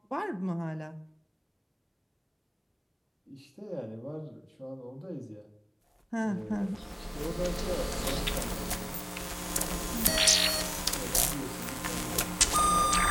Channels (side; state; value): both; identical; correlation 1.00